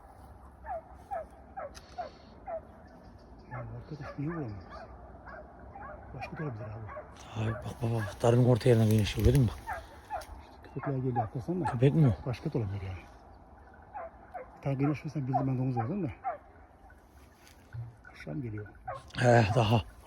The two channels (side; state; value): both; identical; correlation 1.00